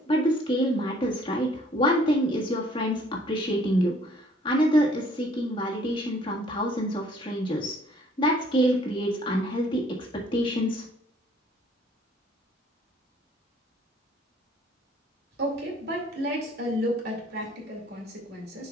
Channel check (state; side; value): normal; both; correlation 0.59